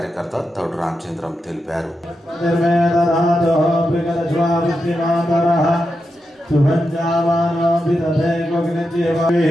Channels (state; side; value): normal; both; correlation 0.87